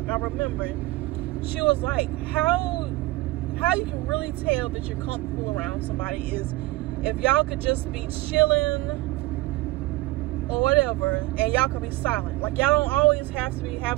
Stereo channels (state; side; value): quieter; left; 19.9 dB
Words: I remember, she was like, how you can really tell that you're comfortable around somebody is if y'all could just be chilling or whatever, and y'all could be silent. Like, y'all don't always have to be